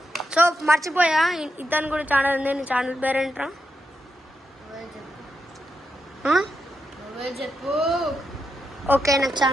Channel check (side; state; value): both; normal; correlation 0.85